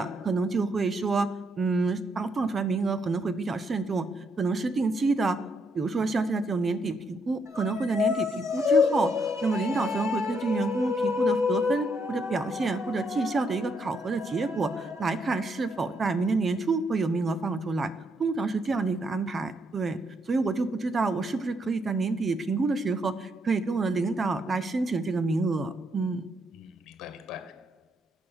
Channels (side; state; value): both; normal; correlation 0.75